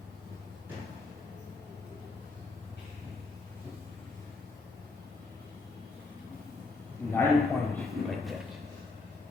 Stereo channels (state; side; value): quieter; right; 3.7 dB